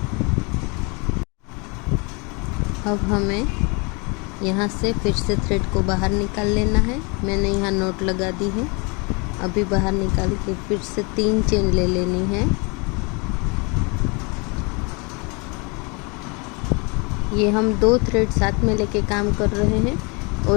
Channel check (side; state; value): right; quieter; 30.5 dB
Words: अब हमें यहाँ से फिर से थ्रेड को बाहर निकाल लेना है। मैंने यहाँ नोट लगा दी है। अभी बाहर निकाल के फिर से 3 चेन ले लेनी है। ये हम 2 थ्रेड साथ में लेके काम कर रहे हैं